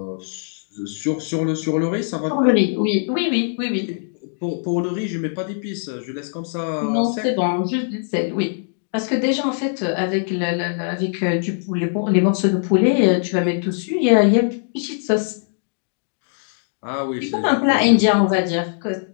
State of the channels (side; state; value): right; silent; digital silence